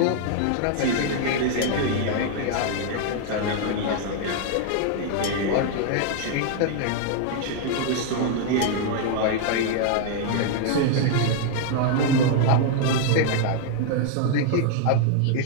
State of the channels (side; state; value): both; different; correlation 0.00